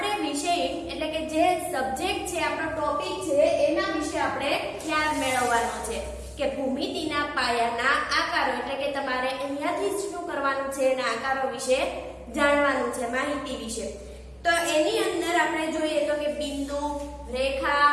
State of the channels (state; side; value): identical; both; correlation 1.00